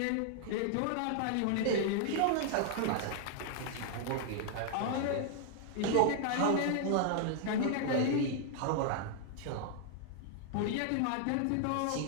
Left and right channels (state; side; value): different; both; correlation -0.01